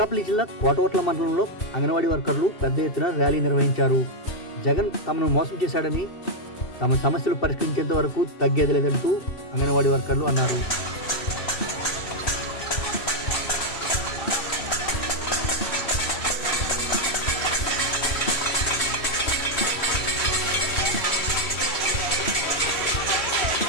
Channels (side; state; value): right; late; 3.2 ms